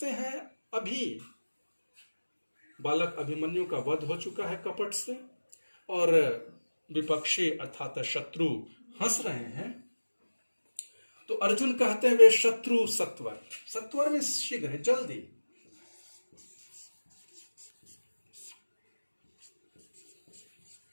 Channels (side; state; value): both; inverted; correlation -1.00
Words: हैं, अभी बालक अभिमन्यु का वध हो चुका है कपट से, और विपक्षी अर्थात शत्रु हंस रहे हैं, तो अर्जुन कहते हैं वे शत्रु सत्वर, सत्वर में शीघ्र है, जल्दी।